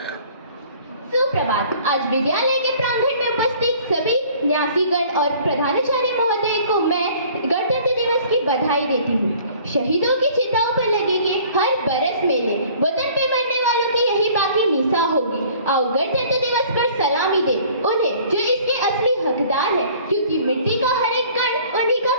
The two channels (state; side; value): inverted; both; correlation -0.52